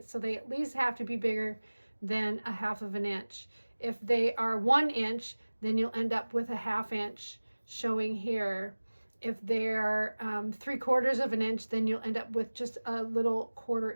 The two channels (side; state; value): both; inverted; correlation -1.00